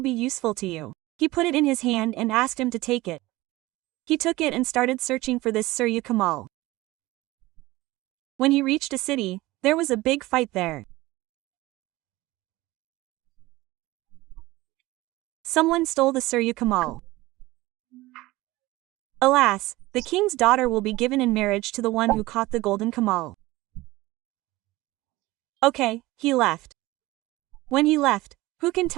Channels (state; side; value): quieter; left; 19.2 dB